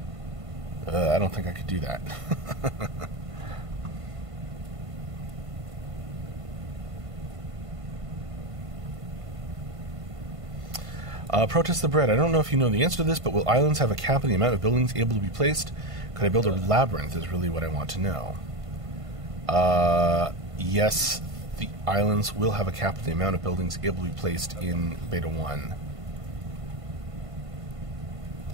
I don't think I could do that. Protest the Bread. I don't know if you know the answer to this, but will islands have a cap on the amount of buildings able to be placed? Could I build a labyrinth is really what I want to know. Yes, the islands will have a cap on the amount of buildings able to be placed in Beta 1.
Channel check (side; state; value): left; late; 1.5 ms